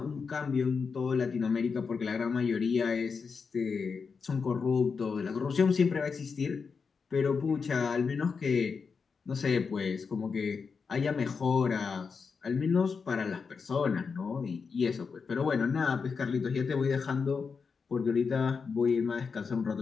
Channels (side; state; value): right; quieter; 5.4 dB